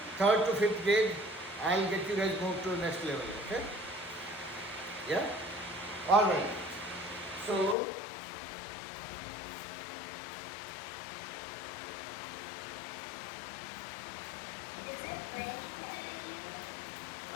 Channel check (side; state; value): right; drops out; at 7.8 s